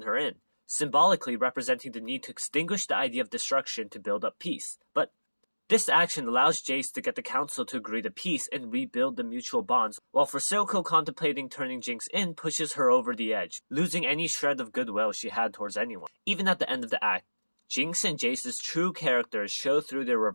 her in, symbolically representing the need to extinguish the idea of destruction to build up peace. But this action allows Jayce to get the council to agree to peace and rebuild the mutual bonds, while for Silco contemplating turning Jinx in pushes her over the edge, losing any shred of goodwill she had towards anyone. Even at the end of the act, Jinx and Jayce's true characters show through their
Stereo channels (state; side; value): inverted; both; correlation -1.00